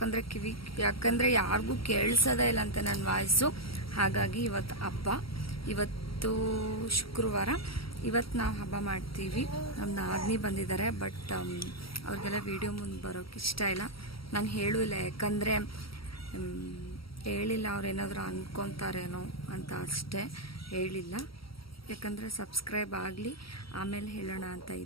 ಯಾಕಂದರೆ ಯಾರಿಗೂ ಕೇಳಿಸೋದೇ ಇಲ್ಲ ಅಂತ ನನ್ನ ವಾಯ್ಸು. ಹಾಗಾಗಿ ಇವತ್ತು ಹಬ್ಬ, ಇವತ್ತು ಶುಕ್ರವಾರ. ಇವತ್ತು ನಾವು ಹಬ್ಬ ಮಾಡ್ತೀವಿ. ನಮ್ಮ ನಾದಿನಿ ಬಂದಿದ್ದಾರೆ, ಬಟ್ ಅವ್ರಿಗೆಲ್ಲ ವಿಡಿಯೋ ಮುಂದೆ ಬರೋಕ್ಕೆ ಇಷ್ಟ ಇಲ್ಲ. ನಾನು ಹೇಳೂ ಇಲ್ಲ, ಯಾಕಂದರೆ ಹೇಳಿಲ್ಲ ಅವ್ರೇನಾದರೂ ಅಂದ್ಕೊತಾರೇನೋ ಅಂತ ಅಷ್ಟೇ ಹೇಳಿಲ್ಲ. ಯಾಕಂದರೆ ಸಬ್ಸ್ಕ್ರೈಬ್ ಆಗಲಿ, ಆಮೇಲೆ ಹೇಳೋಣ ಅಂತ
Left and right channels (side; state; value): right; late; 0.75 ms